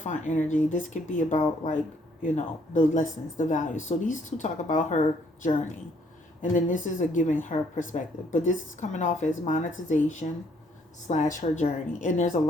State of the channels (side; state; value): both; normal; correlation 0.66